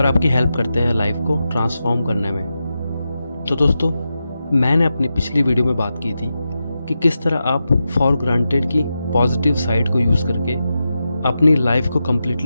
आपकी हेल्प करते हैं लाइफ को ट्रांसफॉर्म करने में। तो दोस्तों, मैंने अपनी पिछली वीडियो में बात की थी कि किस तरह आप फॉर ग्रांटेड की पॉजिटिव साइड को यूज़ करके अपनी लाइफ को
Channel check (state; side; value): inverted; both; correlation -0.90